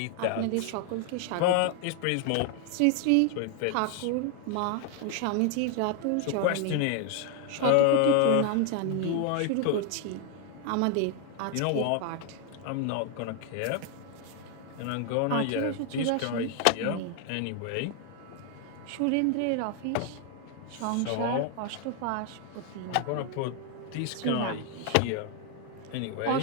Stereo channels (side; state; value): both; different; correlation 0.00